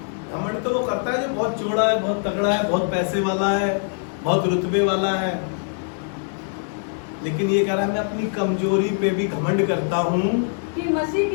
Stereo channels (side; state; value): right; silent; 63 dB below the other